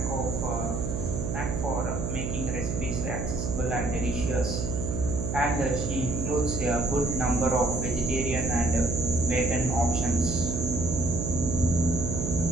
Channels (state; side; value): noise; right; hum, 3 dB below the sound